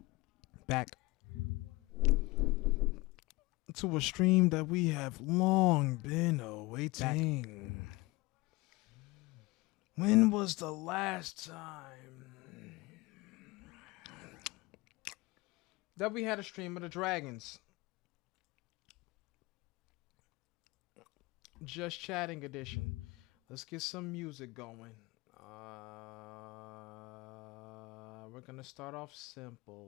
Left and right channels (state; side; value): quieter; right; 22.9 dB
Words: back to a stream that we have long been awaiting. When was the last time that we had a stream of the Dragons? Just Chatting edition. Let's get some music going. We're gonna start off